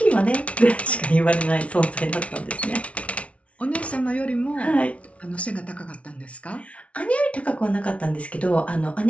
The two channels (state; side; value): late; right; 0.063 ms